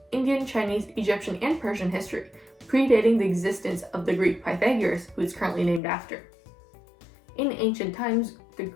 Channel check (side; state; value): right; drops out; at 5.8 s